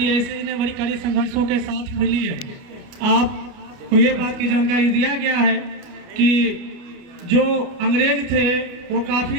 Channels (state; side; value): late; left; 29 ms